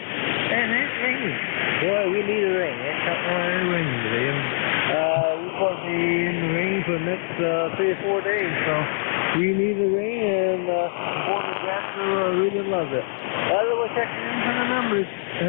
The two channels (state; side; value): silent; right; 63 dB below the other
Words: it's raining. Boy, we need a rain. It's not really raining today. And we're supposed to be in the rain for the next 3 or 4 days. So we need the rain, and Porter Jackson really loves it. We'll check in for the numbers.